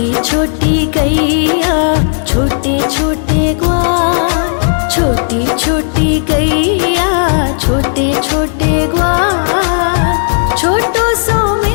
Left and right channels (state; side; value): silent; right; digital silence